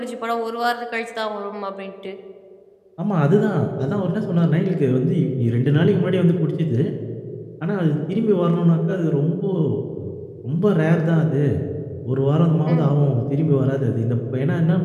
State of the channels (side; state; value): both; identical; correlation 1.00